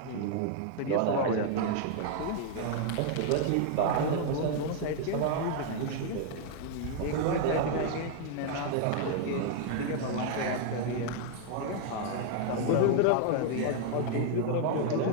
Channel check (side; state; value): both; different; correlation 0.00